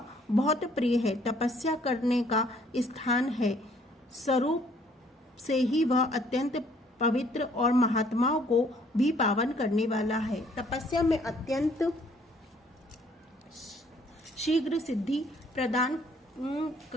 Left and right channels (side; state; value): both; normal; correlation 0.62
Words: बहुत प्रिय है, तपस्या करने का स्थान है। स्वरूप से ही वह अत्यंत पवित्र और महात्माओं को भी पावन करने वाला है। तपस्या में अत्यंत शीघ्र सिद्धि प्रदान